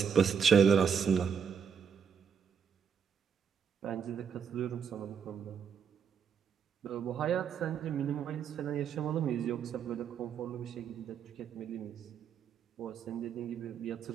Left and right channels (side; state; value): left; quieter; 7.1 dB